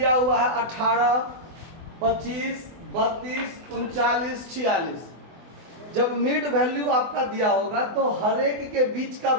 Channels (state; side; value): late; left; 24 ms